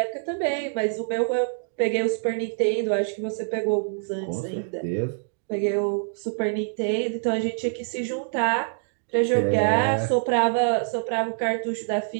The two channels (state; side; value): silent; left; digital silence